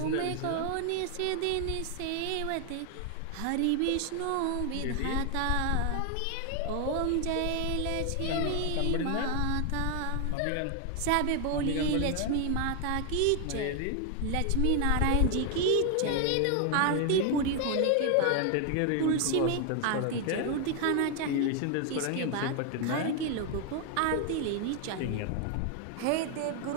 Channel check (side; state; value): both; different; correlation 0.01